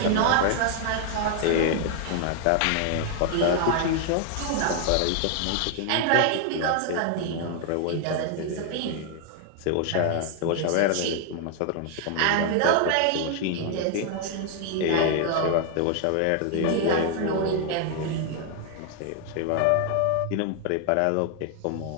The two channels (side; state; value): both; different; correlation 0.00